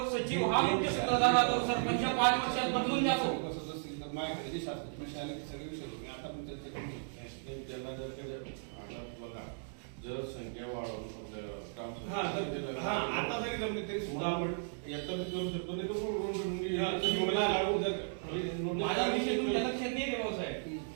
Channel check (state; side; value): silent; left; digital silence